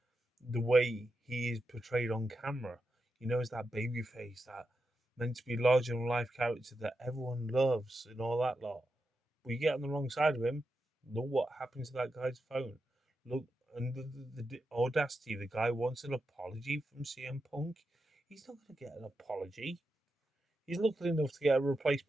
the way he is portrayed on camera. You know, as that baby face, that meant to be larger than life character that everyone loves and all that lot. But you get on the wrong side of him, look what happened to that guy's phone. Look, and the audacity, the guy wants an apology from CM Punk. He's not going to get an apology. He's lucky enough to get a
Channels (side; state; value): both; normal; correlation 0.88